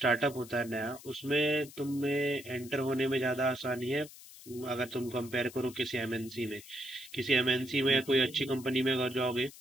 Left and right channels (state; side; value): noise; left; hiss, 18 dB below the sound